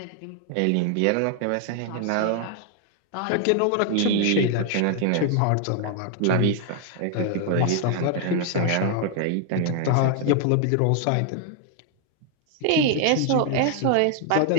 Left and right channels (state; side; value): different; both; correlation 0.00